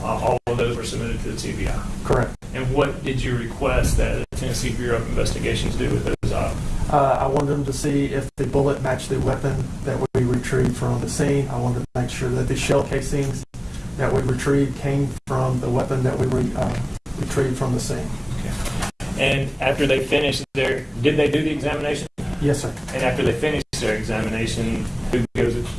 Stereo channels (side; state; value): both; identical; correlation 1.00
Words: All of those were submitted to the TBI. Correct. And what did you request that the Tennessee Bureau of Investigations do with those items? I wanted them to see if the bullet matched the weapon that we retrieved from the scene. I wanted to make sure that the shell casings that we retrieved came from the weapon that we retrieved from the scene. Okay. And after they finished did they do the examination? Yes, sir. And after they finish their examination,